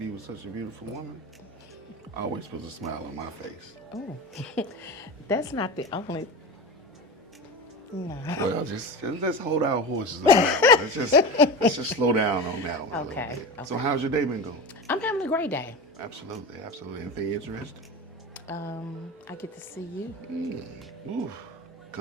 with such a beautiful woman, always puts a smile on my face. Oh, that's not the only. No. Well, just let's hold our horses on that one. Let's just slow down on that one. Okay, A little bit. okay. So how's your day been going? I'm having a great day. Absolutely, absolutely. Anything interesting? I get to see you. Ooh,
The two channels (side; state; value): both; normal; correlation 0.26